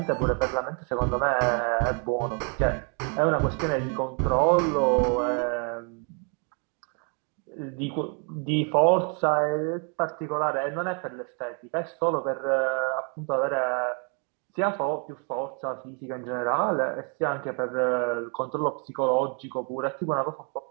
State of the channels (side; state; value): left; quieter; 39.2 dB